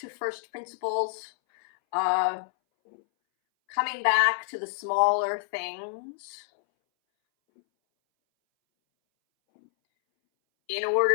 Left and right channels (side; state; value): right; silent; 60 dB below the other